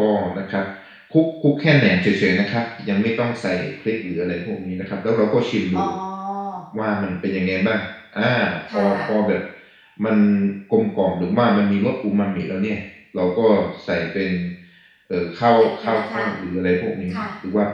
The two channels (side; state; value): both; identical; correlation 1.00